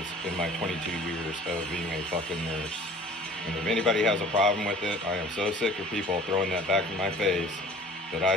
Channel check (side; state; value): both; normal; correlation 0.47